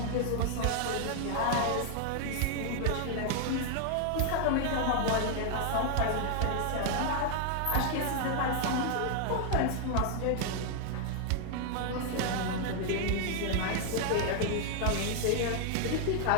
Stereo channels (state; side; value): different; both; correlation 0.00